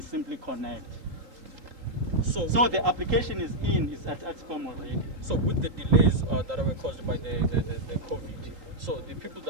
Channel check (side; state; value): left; late; 3.8 ms